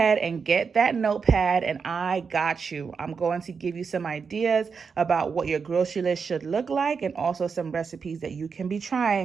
and get that notepad and I got you. I'm going to give you some ideas about what your grocery list should look like and also some recipes that you can be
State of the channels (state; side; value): quieter; left; 5.7 dB